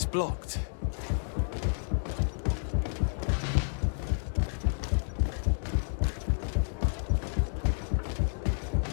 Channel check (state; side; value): silent; right; digital silence